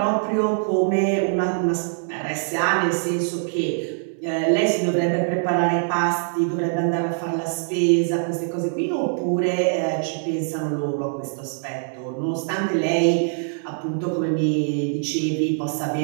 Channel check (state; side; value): silent; left; 63 dB below the other